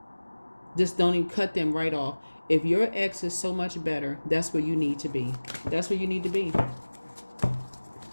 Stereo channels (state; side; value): inverted; both; correlation -1.00